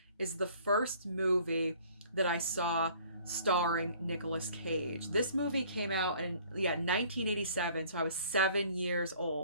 is the first movie that I saw starring Nicolas Cage. This movie came out in 1987, so I was 7 years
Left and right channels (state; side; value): inverted; both; correlation -0.55